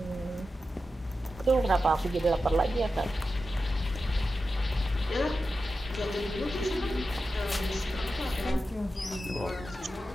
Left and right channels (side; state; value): both; normal; correlation 0.91